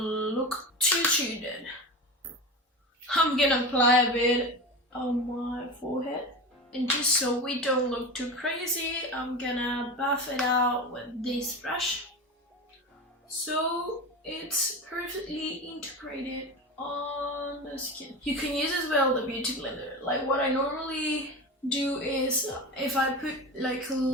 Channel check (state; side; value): normal; both; correlation 0.26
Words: too dead. I'm gonna apply a bit on my forehead. And just so we don't look too crazy, I'm gonna buff it out with this brush. So it's perfectly integrated on the skin. You can use as well the beauty blender. Like what I normally do is if I put like a